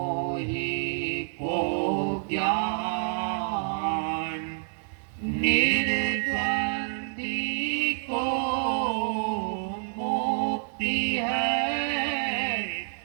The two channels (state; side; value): silent; left; digital silence